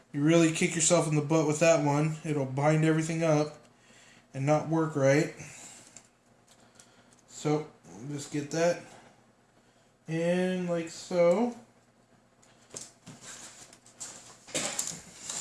You really kick yourself in the butt with that one. It'll bind everything up and not work right. So, just get that in like so.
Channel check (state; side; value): identical; both; correlation 1.00